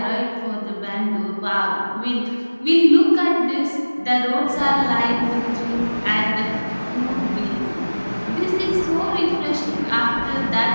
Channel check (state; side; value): inverted; both; correlation -1.00